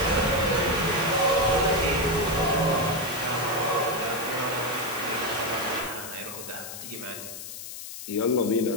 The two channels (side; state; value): left; noise; hiss, 10 dB below the sound